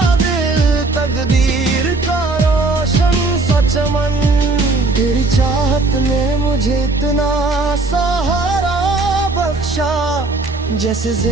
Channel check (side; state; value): left; quieter; 3.4 dB